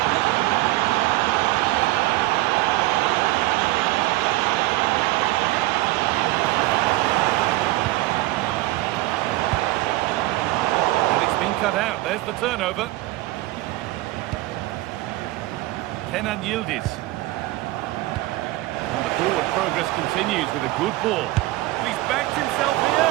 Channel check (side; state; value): left; quieter; 18.2 dB